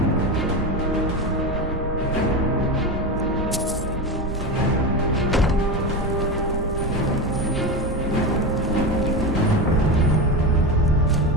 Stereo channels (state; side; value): normal; both; correlation 0.20